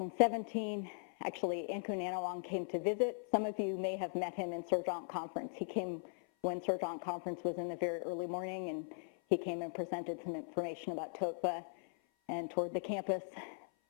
actually, Ankun Anawang came to visit. Some of you may have met him in Surgeon Conference. He came when Surgeon Conference was in the very early morning, and he came and presented some information about TOETVA and toured the campus,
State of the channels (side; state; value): right; silent; 52 dB below the other